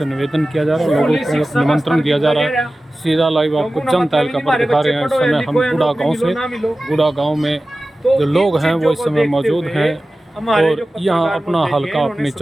निवेदन किया जा रहा है, लोगों को निमंत्रण दिया जा रहा है। सीधा लाइव आपको जनता हल्का पर दिखा रहे हैं। इस समय हम गुड़ा गांव से, गुड़ा गांव में जो लोग हैं वो इस समय मौजूद हैं और यहाँ अपना हल्का अपनी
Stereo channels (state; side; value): normal; both; correlation 0.96